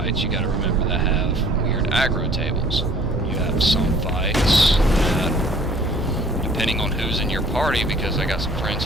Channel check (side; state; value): both; normal; correlation 0.53